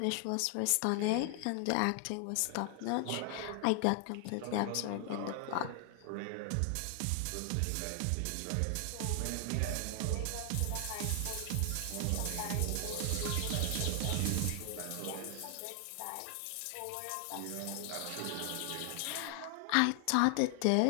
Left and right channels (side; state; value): both; different; correlation 0.00